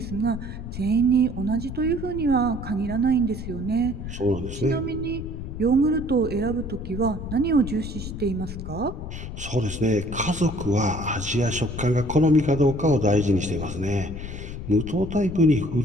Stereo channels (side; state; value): left; noise; rumble, 8 dB below the sound